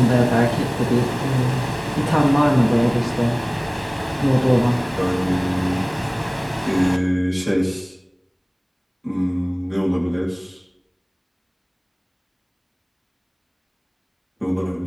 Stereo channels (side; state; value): both; identical; correlation 1.00